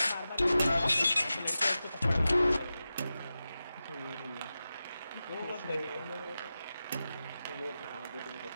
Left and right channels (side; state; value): both; inverted; correlation -0.93